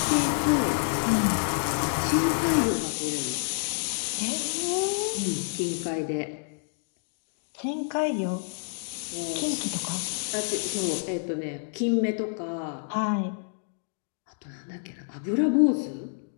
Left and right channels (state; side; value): silent; right; digital silence